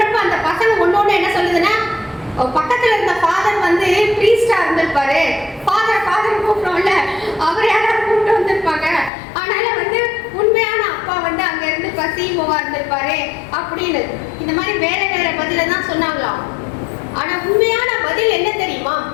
அந்த பசங்க ஒன்னொன்னு என்ன சொல்லுதுன்னா, பக்கத்துல இருந்த ஃபாதர் வந்து ப்ரீஸ்டா இருந்திருப்பாரு, ஃபாதர் கூப்பிட்டோம்ல அவர் யாராவது கூப்பிட்டு வந்திருப்பாங்க, அதனால வந்து உண்மையான அப்பா வந்து அங்க இருந்து சிஇஓவா இருந்திருப்பாரு அப்படின்னு இந்த மாதிரி வேற வேற பதில தான் சொன்னாங்களாம். ஆனா உண்மையான பதில் என்ன தெரியுமா,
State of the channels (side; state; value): right; drops out; at 9.1 s